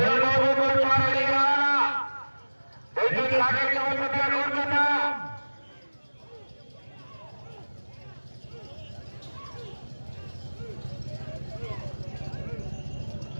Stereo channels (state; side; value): inverted; both; correlation -1.00